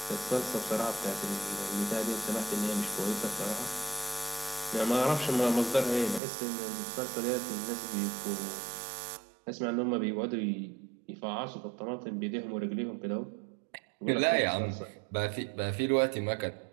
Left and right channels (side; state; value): left; drops out; at 6.2 s